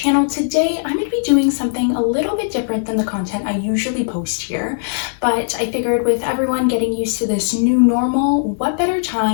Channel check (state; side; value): silent; right; 67 dB below the other